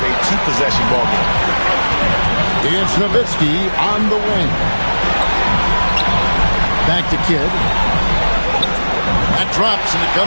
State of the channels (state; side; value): inverted; both; correlation -1.00